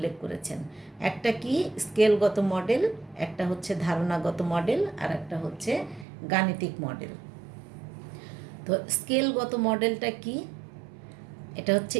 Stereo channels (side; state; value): left; drops out; at 6.1 s